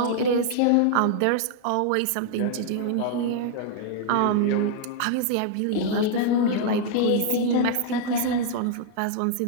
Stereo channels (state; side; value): different; both; correlation -0.01